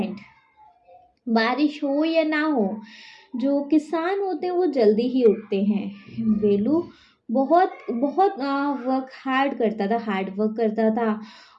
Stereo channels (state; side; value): identical; both; correlation 1.00